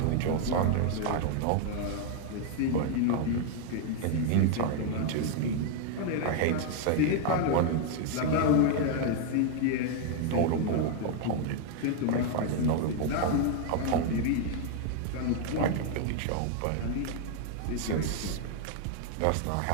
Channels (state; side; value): different; both; correlation 0.00